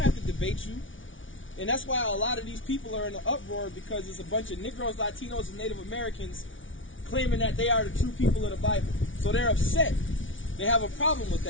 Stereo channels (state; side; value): late; right; 0.56 ms